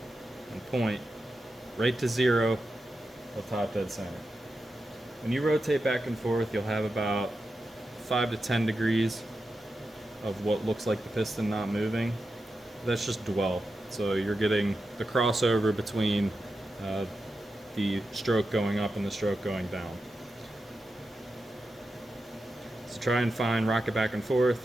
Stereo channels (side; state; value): both; normal; correlation 0.89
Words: and point right to 0 of top dead center. When you rotate back and forth, you'll have about 5 to 10 degrees of what looks like the piston not moving. that's just dwell. So you're getting the crossover between the stroke going up and the stroke going down. So try and rock it back and forth,